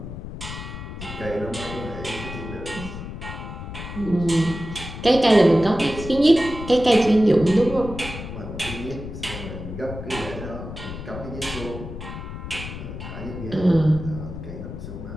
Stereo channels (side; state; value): left; noise; rumble, 9 dB below the sound